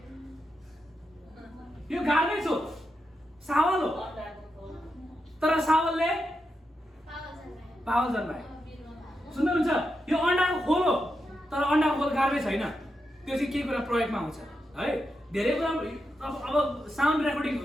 यो गार्बेज हो, सावल हो, तर सावलले पावल जन्मायो। सुन्नुहुन्छ, यो अन्डाको खोल हो, तर अन्डाको खोल गार्बेज होइन। त्यो चाहिँ के कुरा प्रयोगमा आउँछ है, धेरै कुरा। अब साउन्ड रेकर्डिङ,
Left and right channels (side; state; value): both; normal; correlation 0.87